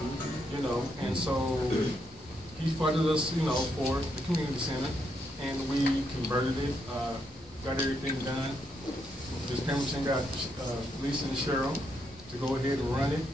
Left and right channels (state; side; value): normal; both; correlation 0.78